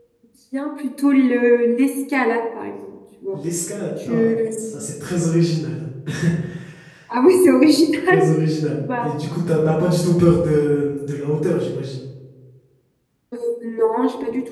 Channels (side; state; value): both; identical; correlation 1.00